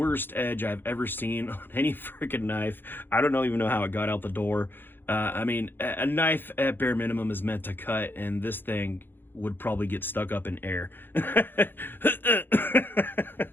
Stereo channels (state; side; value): late; right; 0.098 ms